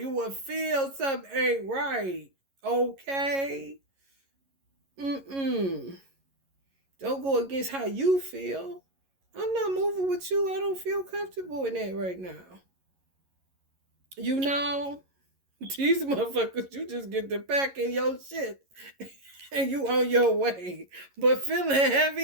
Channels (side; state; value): left; late; 11 ms